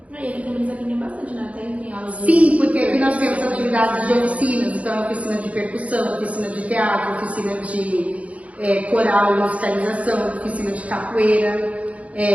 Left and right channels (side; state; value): left; late; 0.066 ms